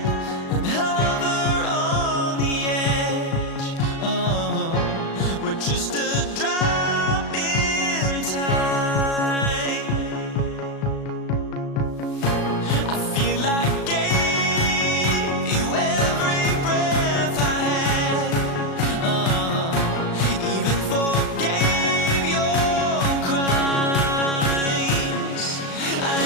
and hover on the edge. Oh, we're just a drop in time. I feel like I gave you every breath I had. Even forgave your crimes. I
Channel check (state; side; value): late; right; 36 ms